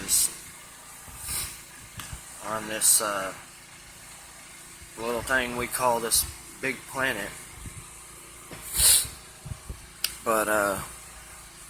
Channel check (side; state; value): both; identical; correlation 1.00